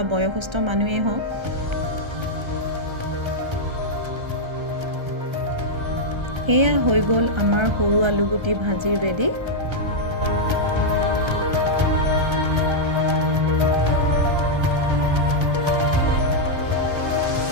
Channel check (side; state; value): left; late; 1.3 ms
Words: বয়সস্থ মানুহেই হওক। এয়া হৈ গ'ল আমাৰ সৰু আলুগুটি ভাজি ৰেডি।